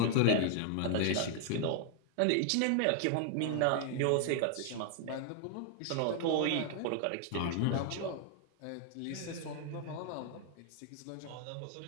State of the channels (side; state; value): both; different; correlation 0.00